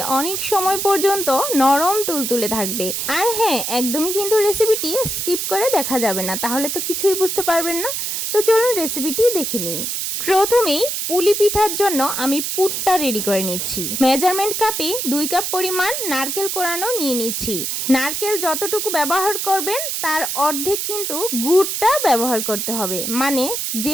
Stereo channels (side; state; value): right; noise; hiss, 2 dB below the sound